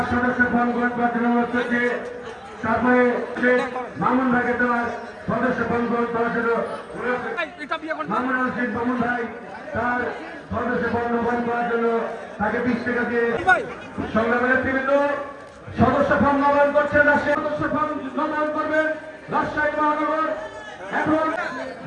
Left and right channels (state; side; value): identical; both; correlation 1.00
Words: সদস্য ফোন অনুরোধ করছে। তারপরে মামুন ভাইকে দেওয়ার সদস্য ফোন দেওয়ার জন্য মামুন রশিদ মামুন ভাই তার সদস্য ফোন করার জন্য তাকে 20 টাকা দিয়ে সংগ্রামের নেতৃবৃন্দ সদস্য ফোন নবায়ন করছেন। রাজশাহী সদস্য ফোন নবায়ন করবেন রাজশাহী মহানগর। এখন